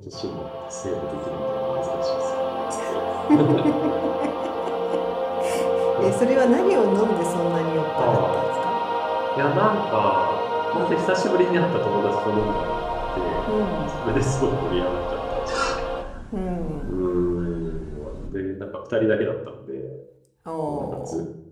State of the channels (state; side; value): identical; both; correlation 1.00